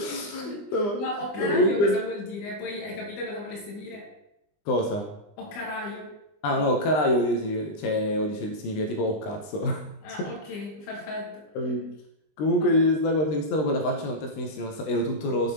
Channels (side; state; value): right; late; 20 ms